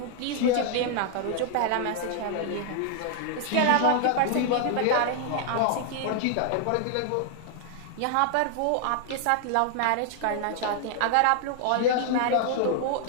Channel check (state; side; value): different; both; correlation 0.00